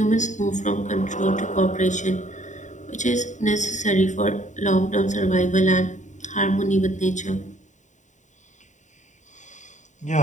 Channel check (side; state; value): right; late; 0.35 ms